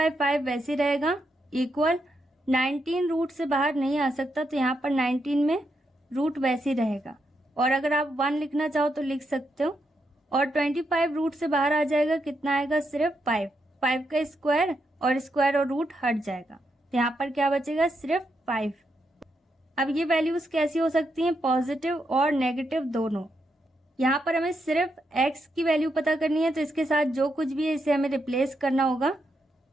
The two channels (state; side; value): normal; both; correlation 0.81